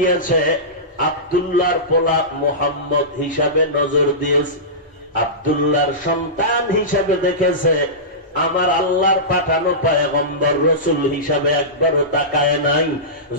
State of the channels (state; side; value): normal; both; correlation -0.18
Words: আব্দুল্লাহর পোলা মুহাম্মদ হিসাবে নজর দিয়েছে, আব্দুল্লাহর সন্তান হিসাবে দেখেছে, আমার আল্লাহর পাঠানো পয়গম্বর রসুল হিসাবে একবারও তাকায় নাই।